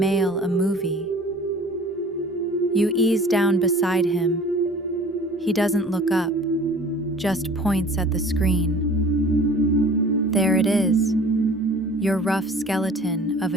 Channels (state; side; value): normal; both; correlation 0.46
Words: a movie? You ease down beside him. He doesn't look up, just points at the screen. There it is, your rough skeleton of